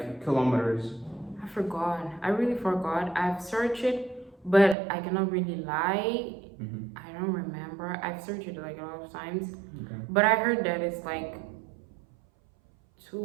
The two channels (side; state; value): left; drops out; at 4.8 s